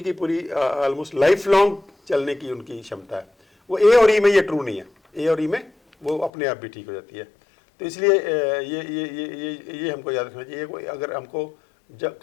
की पूरी ऑलमोस्ट लाइफ लॉन्ग चलने की उनकी क्षमता है। वो ए और ई में ये ट्रू नहीं है। ए और ई में वो अपने आप भी ठीक हो जाती है। तो इसलिए ये हमको याद रखना चाहिए। कोई अगर हमको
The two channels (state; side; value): drops out; right; at 6.3 s